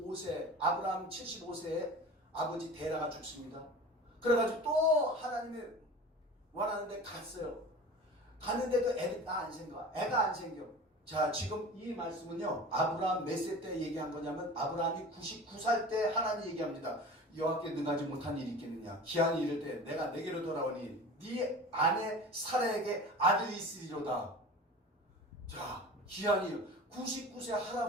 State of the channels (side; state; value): both; normal; correlation 0.37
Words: 아브라함 75세에 아버지 데라가 죽습니다. 그래가지고 또 하나님이 원하는데 갔어요. 갔는데 그 애가 안 생겨. 자, 지금 이 말씀은요 아브라함 몇 세 때 얘기한 거냐면 아브라함이 99살 때 하나님 얘기합니다. 여호와께 능하지 못한 일이 있겠느냐. 기한이 이를 때 내가 내게로 돌아오니 네 아내 사라에게 아들이 있으리로다. 자, 기한이 99세